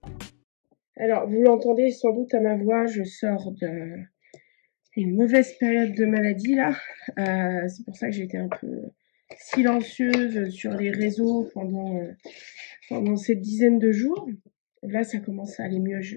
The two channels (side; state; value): right; silent; 62 dB below the other